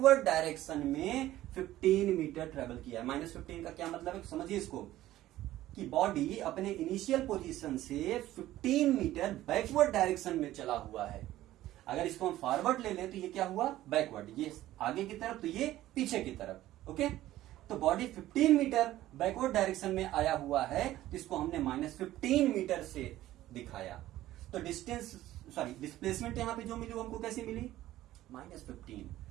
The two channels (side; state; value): left; quieter; 14.7 dB